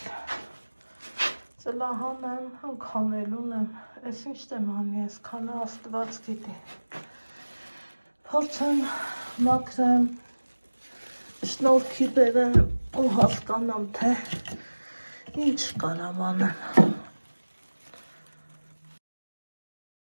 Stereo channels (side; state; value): both; inverted; correlation -1.00